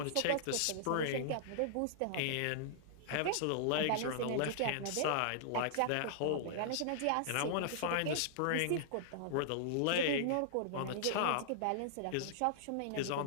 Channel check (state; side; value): different; both; correlation -0.01